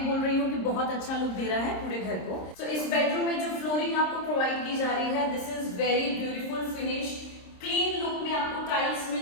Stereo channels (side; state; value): right; late; 26 ms